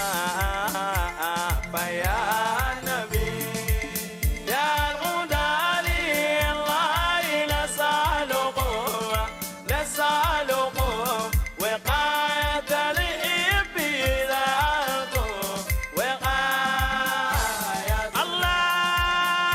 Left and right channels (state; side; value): identical; both; correlation 1.00